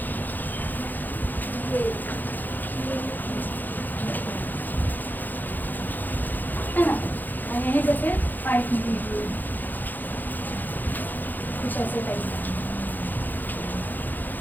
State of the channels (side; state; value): right; late; 0.086 ms